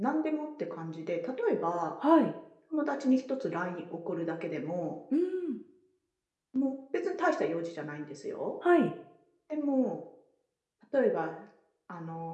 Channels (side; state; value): both; identical; correlation 1.00